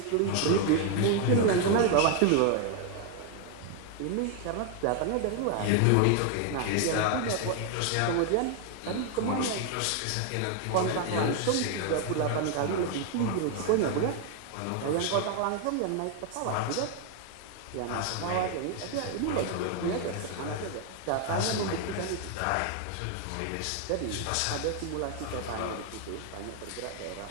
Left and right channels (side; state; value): both; different; correlation 0.00